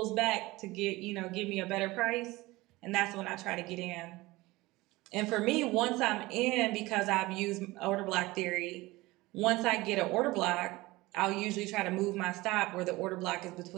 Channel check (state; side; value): quieter; left; 20.4 dB